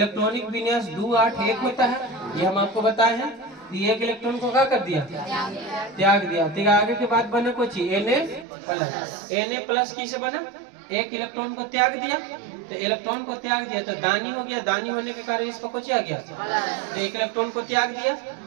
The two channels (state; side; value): drops out; left; at 8.5 s